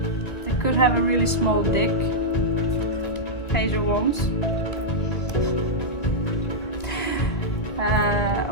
They could have a really small dick. Page of Wands.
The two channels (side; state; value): right; late; 2.0 ms